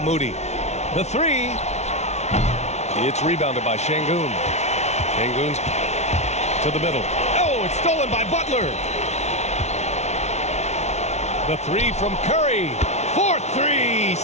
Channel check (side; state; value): right; late; 0.32 ms